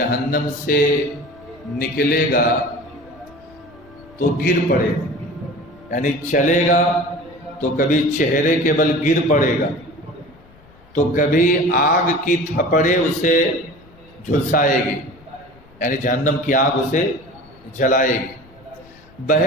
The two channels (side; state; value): left; noise; rumble, 26 dB below the sound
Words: سے نکلے گا تو گر پڑے گا، یعنی چلے گا تو کبھی چہرے کے بل گر پڑے گا، تو کبھی آگ کی تھپڑے اسے جھلسائے گی، یعنی جہنم کی آگ اسے جلائے گی۔